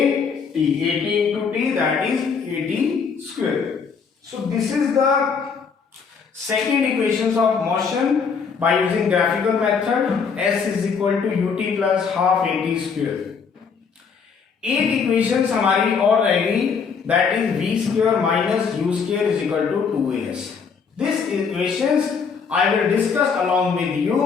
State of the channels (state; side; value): quieter; right; 5.8 dB